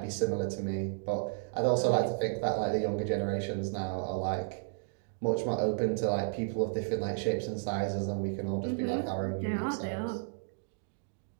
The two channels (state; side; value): silent; left; digital silence